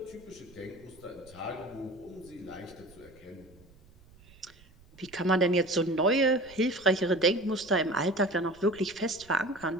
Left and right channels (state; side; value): noise; right; rumble, 25 dB below the sound